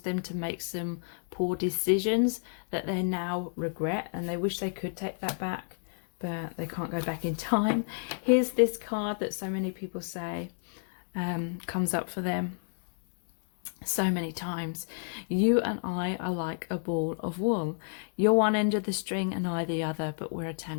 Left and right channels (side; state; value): right; silent; digital silence